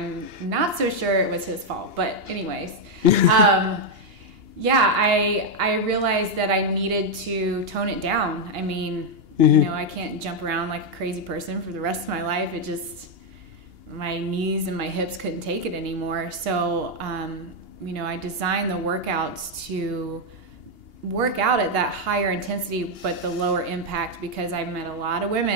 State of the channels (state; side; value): late; left; 2.8 ms